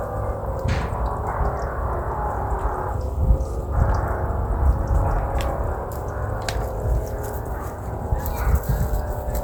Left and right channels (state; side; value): identical; both; correlation 1.00